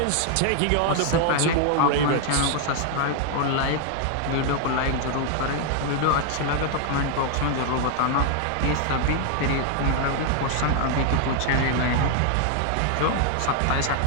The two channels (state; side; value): different; both; correlation 0.00